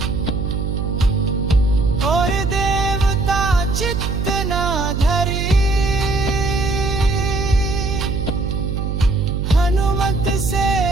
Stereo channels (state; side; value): noise; right; hum, 2 dB below the sound